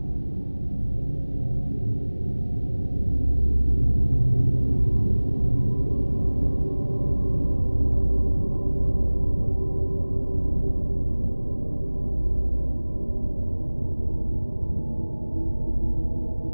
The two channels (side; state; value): both; inverted; correlation -1.00